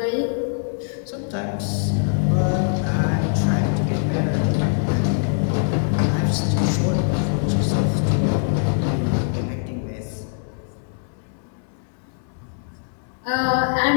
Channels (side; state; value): right; silent; 64 dB below the other